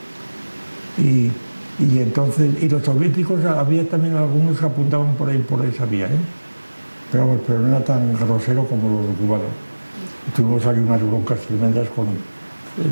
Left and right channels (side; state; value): both; inverted; correlation -1.00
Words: Y entonces, y los soviéticos, había también algunos que apuntaban por esa vía, ¿eh? Pero no era tan grosero como los cubanos. Tuvimos ahí unas broncas tremendas